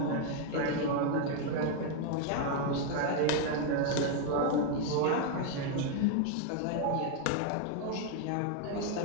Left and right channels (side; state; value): both; different; correlation 0.00